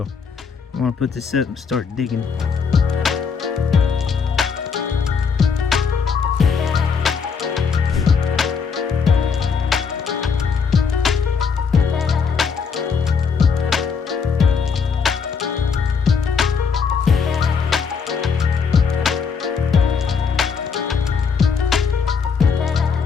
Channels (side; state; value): right; quieter; 5.8 dB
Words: I want to put this up and start digging.